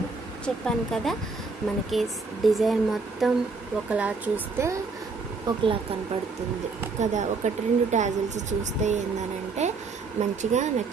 చెప్పాను కదా. మనకి డిజైన్ మొత్తం ఒకలా చూస్తే ఒకలా కనపడుతుంది కదా. 1-2 టాజిల్స్ చూస్తే ఏందనంటే మంచిగా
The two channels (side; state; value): left; quieter; 4.2 dB